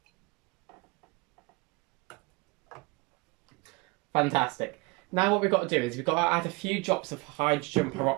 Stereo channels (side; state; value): left; quieter; 25.4 dB